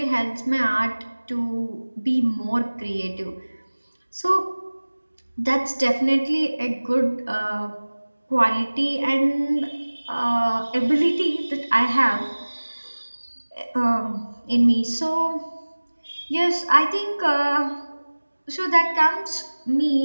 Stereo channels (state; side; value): inverted; both; correlation -1.00